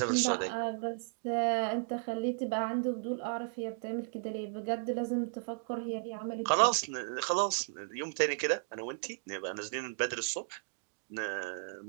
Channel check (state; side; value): silent; left; digital silence